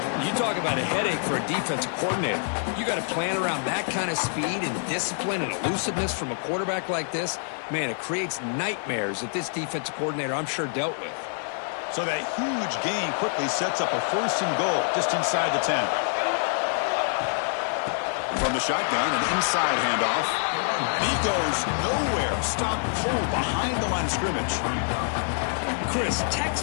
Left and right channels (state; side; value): silent; right; 55 dB below the other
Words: You talk about a headache for a defensive coordinator. You got to plan around that kind of speed and discipline and elusiveness from a quarterback like this. Man, it creates nightmares that this defensive coordinator, I'm sure, dealt with. So that huge gain quickly sets up a 1st and goal just inside the 10. From the shotgun, an inside handoff. And he goes nowhere. Stopped cold behind the line of scrimmage. Chris,